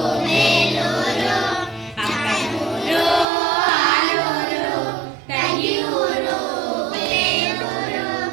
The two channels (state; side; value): drops out; left; at 3.2 s